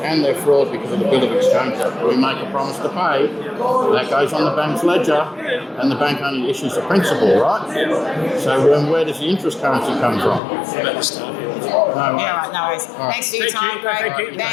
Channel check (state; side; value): drops out; right; at 10.4 s